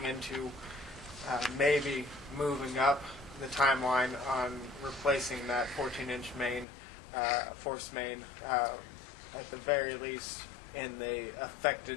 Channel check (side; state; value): right; drops out; at 6.7 s